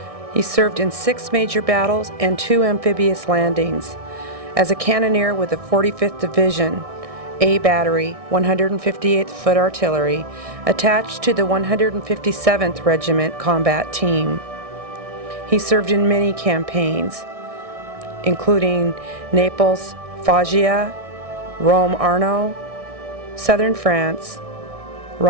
He served in 6 major battles and 2 amphibious landings. As a cannoneer with the 45th Division, A Battery, 158th Foot Artillery, attached to the 157th Regiment Combat Team. He served in many campaigns, including Naples, Foggia, Rome Arno, Southern France,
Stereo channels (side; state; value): left; late; 1.6 ms